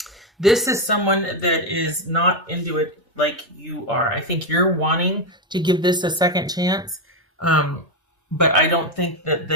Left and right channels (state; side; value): normal; both; correlation 0.07